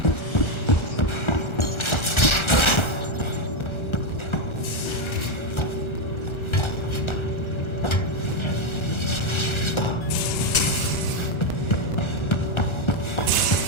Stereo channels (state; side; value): late; right; 1.4 ms